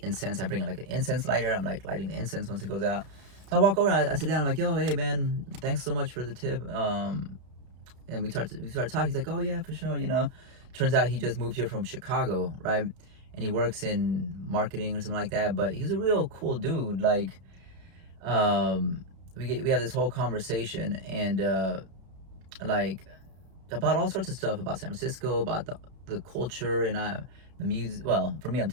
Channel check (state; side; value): late; left; 32 ms